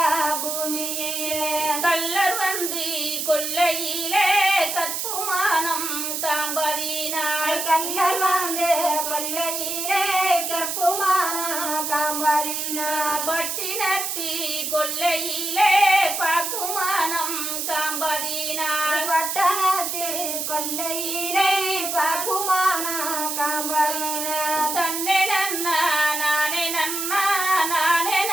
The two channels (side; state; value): right; noise; hiss, 2 dB below the sound